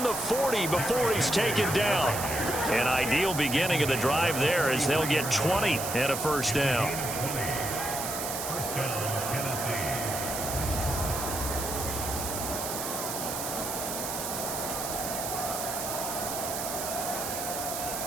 the 40 before he's taken down. An ideal beginning of the drive there as they'll get 20 and a first down.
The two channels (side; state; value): right; noise; hiss, 4 dB below the sound